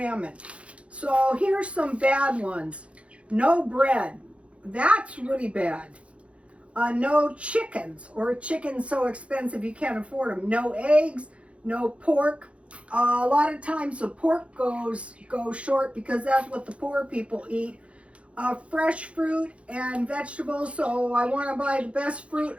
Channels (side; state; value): left; late; 0.061 ms